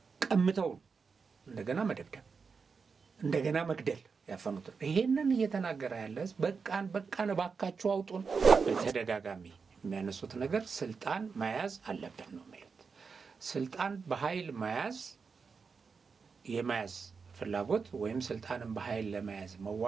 ቀምተው እንደገና መደብደብ እንደገና መግደል ያፈኑት። ይሄንን እየተናገረ ያለ በቃን ባካችሁ አውጡን። በተደጋጋሚ የሚያነሱት ነገር ስልጣን መያዝ አለብን ነው ማለት። ስልጣን በኃይል የመያዝ ፍላጎት ወይም ስልጣንን በኃይል ለመያዝ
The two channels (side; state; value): left; quieter; 5.3 dB